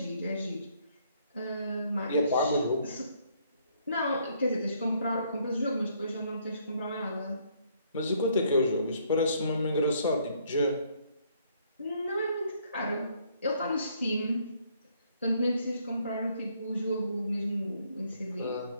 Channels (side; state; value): both; inverted; correlation -0.67